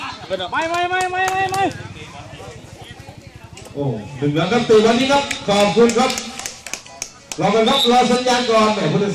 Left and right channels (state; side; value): identical; both; correlation 1.00